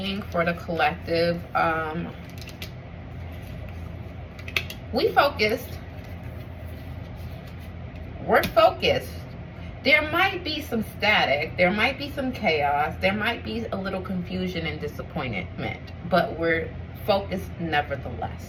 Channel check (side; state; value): both; identical; correlation 1.00